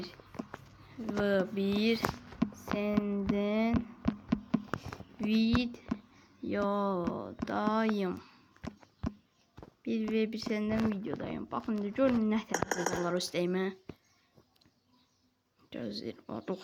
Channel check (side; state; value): both; identical; correlation 1.00